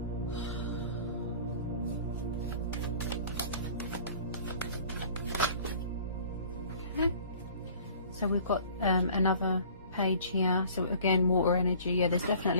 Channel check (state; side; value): inverted; both; correlation -0.49